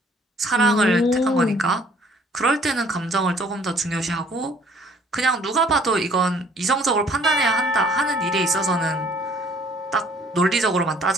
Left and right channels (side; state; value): both; normal; correlation 0.58